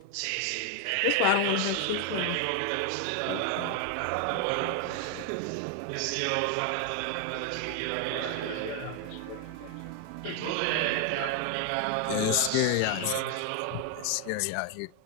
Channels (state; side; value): different; both; correlation 0.00